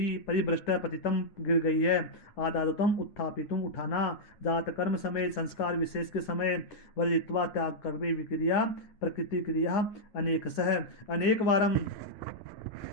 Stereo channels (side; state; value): right; late; 9.4 ms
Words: परिभ्रष्ट पतितम गिर गई है आदातम उत्थापितुम उठाना जात कर्म समय संस्कार विशेष के समय वर्जित्वा त्याग कर्मे विक्रिया प्रकृति क्रिया अनेक सह अनेक वारम